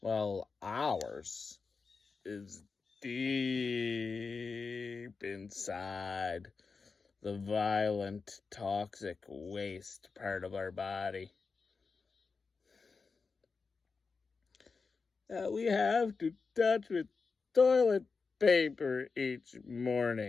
ours is deep inside the violent, toxic waste part of our body. That we have to touch with toilet paper each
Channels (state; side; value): quieter; right; 4.7 dB